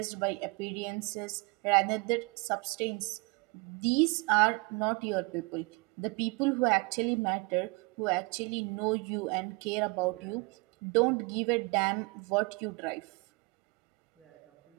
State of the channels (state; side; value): quieter; left; 28.3 dB